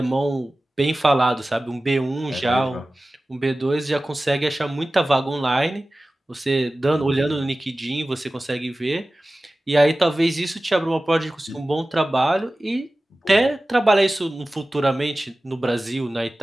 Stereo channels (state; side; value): normal; both; correlation 0.96